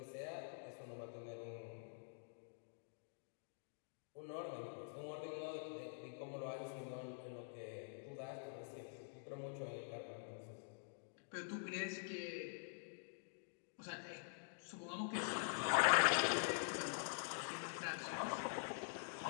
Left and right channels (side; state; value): right; silent; digital silence